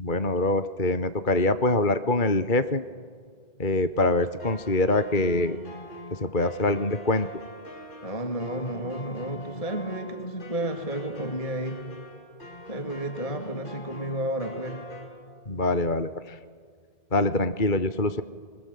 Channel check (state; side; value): late; right; 2.3 ms